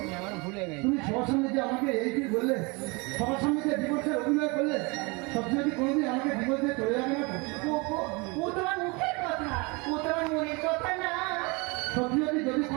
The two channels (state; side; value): quieter; left; 28.0 dB